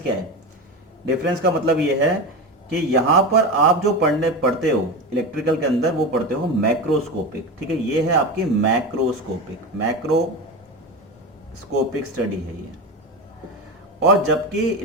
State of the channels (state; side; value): normal; both; correlation 0.22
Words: क्या है, डिफरेंस का मतलब ये है कि यहां पर आप जो पढ़ते हो इलेक्ट्रिकल के अंदर वो पढ़ते हो मैक्रोस्कोपिक, ठीक है, ये है आपकी मैक्रोस्कोपिक स्टडी है ये, और जबकि